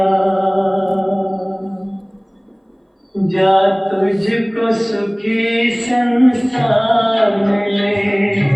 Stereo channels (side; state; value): both; identical; correlation 1.00